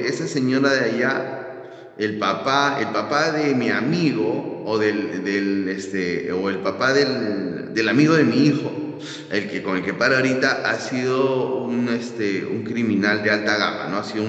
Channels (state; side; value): identical; both; correlation 1.00